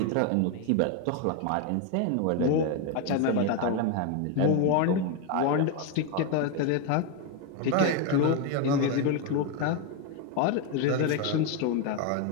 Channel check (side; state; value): both; different; correlation 0.02